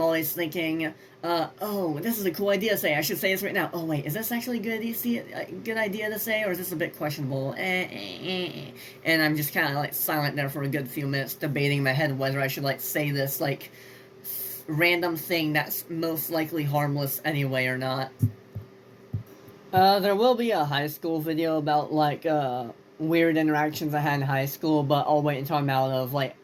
always thinking, oh, this is a cool idea to say. I should say this right now. Oh, wait, is this actually a good idea to say, or is this a bit questionable? And I'm just kind of, like, silent there for a good few minutes, debating in my head whether I should, like, say this, like, random thing that's most likely harmless anyway or not. There will be a high school video about, like, weird interactions I had in high school, but I'll wait until I'm out of, like,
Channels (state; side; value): identical; both; correlation 1.00